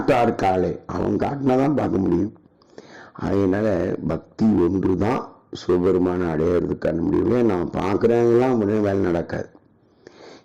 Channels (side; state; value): both; identical; correlation 1.00